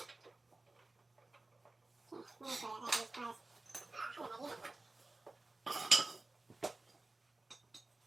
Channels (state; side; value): quieter; left; 3.0 dB